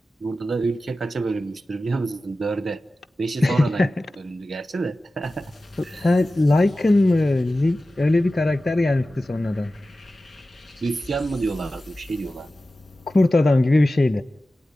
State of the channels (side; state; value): both; normal; correlation 0.95